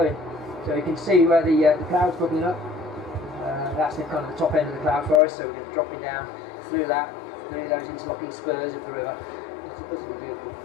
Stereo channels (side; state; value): right; drops out; at 5.2 s